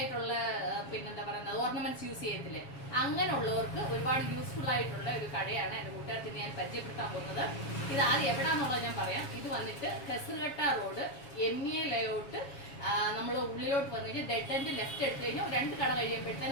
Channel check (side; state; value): right; late; 7.2 ms